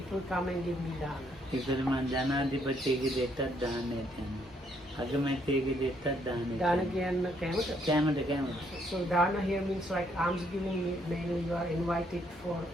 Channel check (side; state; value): both; normal; correlation 0.70